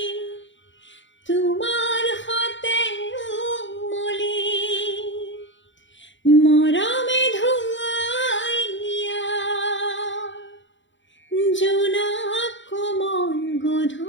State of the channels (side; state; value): right; late; 0.54 ms